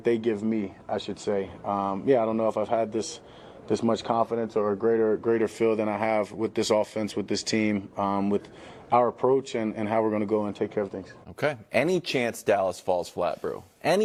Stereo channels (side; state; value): both; identical; correlation 1.00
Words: they give me, I should say. I don't know if I've had this much confidence or a greater feel than I have with this offense, with this team, with our approach and how we're going to go and take care of things. Okay. Any chance Dallas falls flat, bro?